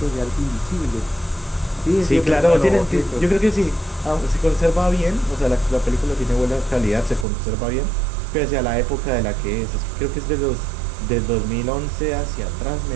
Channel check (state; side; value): drops out; left; at 7.2 s